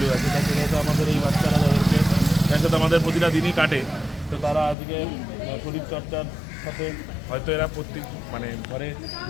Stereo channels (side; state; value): right; drops out; at 4.8 s